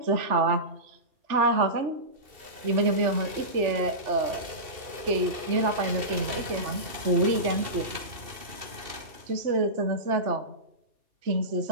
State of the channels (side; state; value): left; late; 2.7 ms